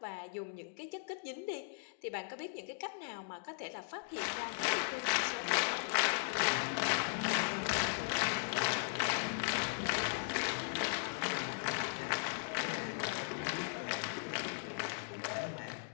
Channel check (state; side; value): silent; right; digital silence